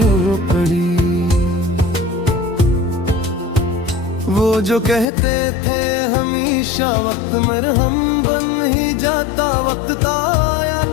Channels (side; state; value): right; drops out; at 5.1 s